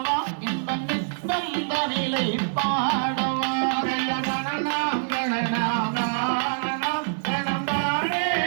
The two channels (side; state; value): left; silent; digital silence